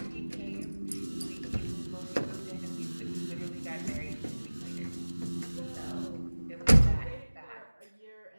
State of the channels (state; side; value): inverted; both; correlation -1.00